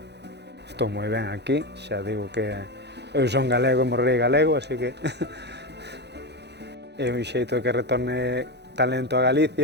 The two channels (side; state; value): left; late; 0.49 ms